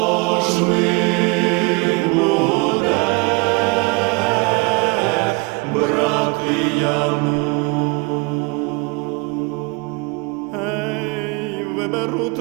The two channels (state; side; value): quieter; left; 28.9 dB